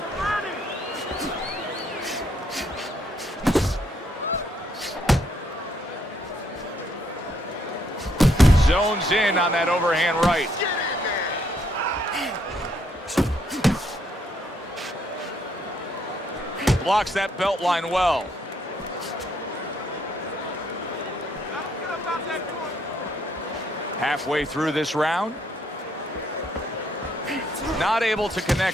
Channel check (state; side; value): normal; both; correlation 0.71